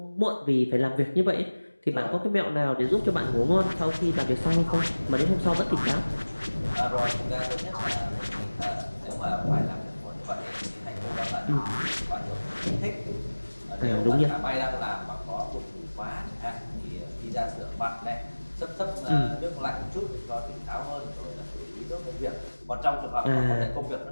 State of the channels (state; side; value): inverted; both; correlation -1.00